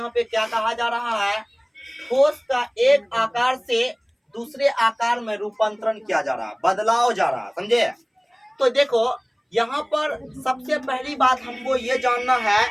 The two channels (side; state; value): both; identical; correlation 1.00